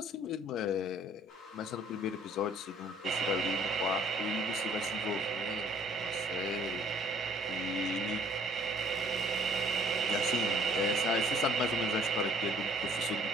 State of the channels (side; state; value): both; normal; correlation 0.58